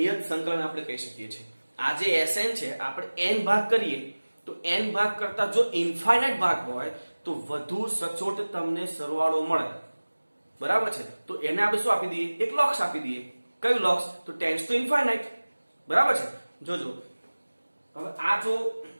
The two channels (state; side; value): inverted; both; correlation -1.00